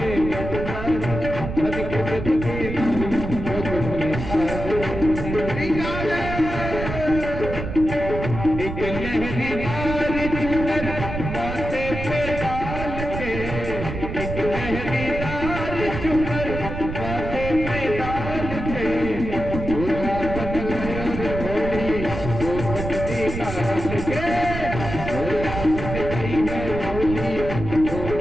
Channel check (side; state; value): right; noise; rumble, 6 dB below the sound